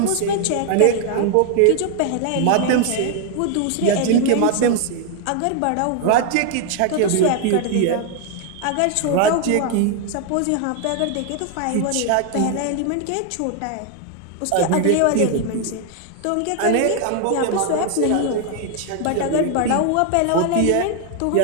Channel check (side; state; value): both; different; correlation 0.00